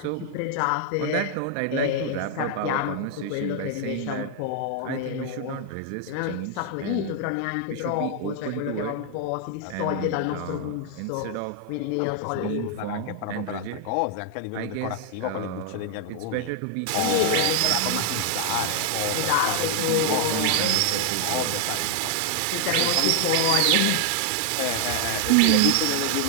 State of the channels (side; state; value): both; different; correlation 0.00